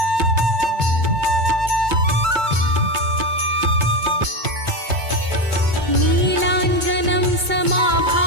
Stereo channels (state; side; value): late; left; 2.2 ms